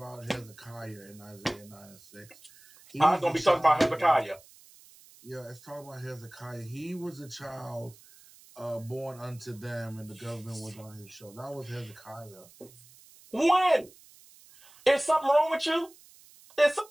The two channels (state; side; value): noise; right; hiss, 24 dB below the sound